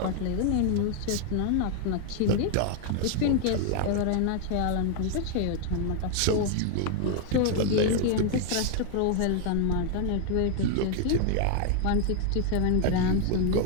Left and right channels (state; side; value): different; both; correlation 0.00